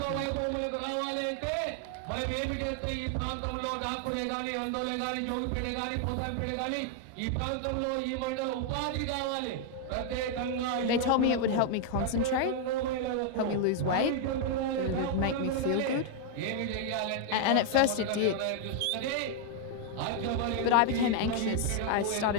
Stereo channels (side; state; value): both; different; correlation 0.00